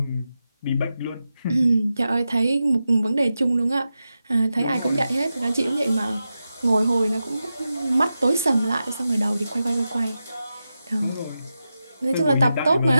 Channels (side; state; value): both; inverted; correlation -0.90